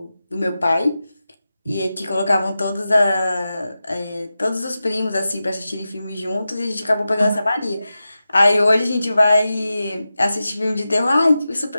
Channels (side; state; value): both; inverted; correlation -0.93